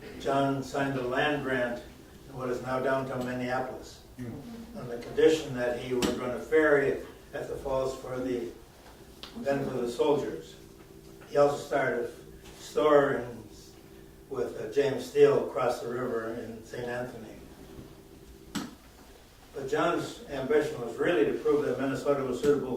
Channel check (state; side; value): identical; both; correlation 1.00